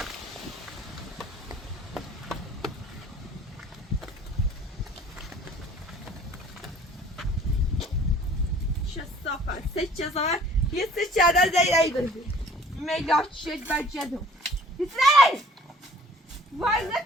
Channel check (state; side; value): normal; both; correlation 0.53